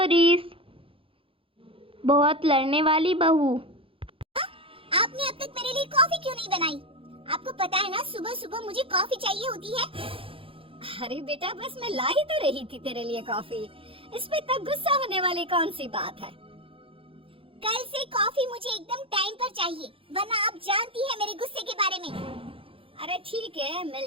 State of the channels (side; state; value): left; late; 0.26 ms